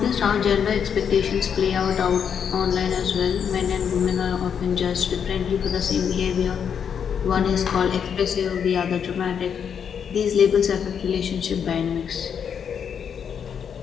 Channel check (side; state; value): right; quieter; 7.6 dB